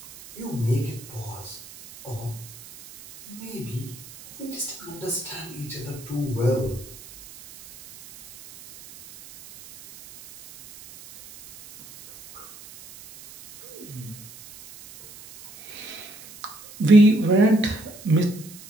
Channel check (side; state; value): right; noise; hiss, 18 dB below the sound